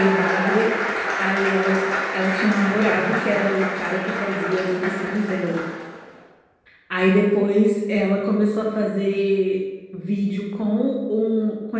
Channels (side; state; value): both; identical; correlation 1.00